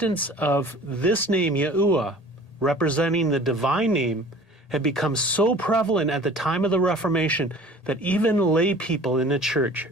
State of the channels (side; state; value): right; late; 1.8 ms